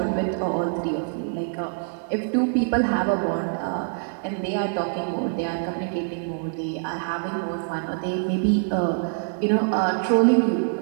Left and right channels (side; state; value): left; silent; digital silence